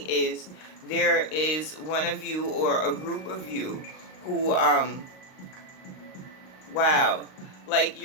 is there is one of you or a group of you who, wow, like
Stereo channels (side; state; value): right; late; 38 ms